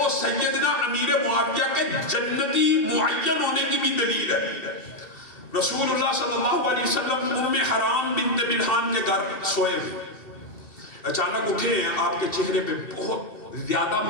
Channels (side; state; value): right; late; 2.7 ms